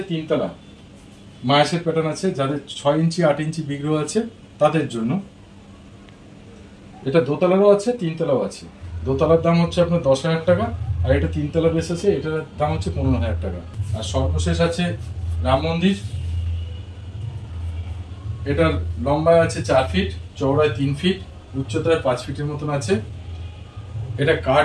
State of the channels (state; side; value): identical; both; correlation 1.00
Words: 3 তলা মায়াসের প্যাটার্ন আছে, যাদের 6 ইঞ্চি 8 ইঞ্চি বিগ্রহ আছে তাদের জন্য। এটা দোতলারও আছে, 3 তলাও আছে। দোতলার দাম হচ্ছে আপনার 10000 টাকা, আর এটা 3 তলা বেস আছে, এটার দাম হচ্ছে 15000 টাকা। আর সর্বশেষ আছে রাম মন্দির। এটার লম্বায় আছে 4 ফিট, চওড়ায় 3 ফিট, উচ্চতায় 5 ফিটের মতন আছে। এটা